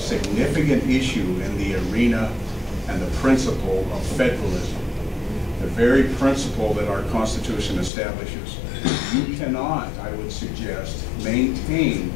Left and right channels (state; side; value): drops out; right; at 7.9 s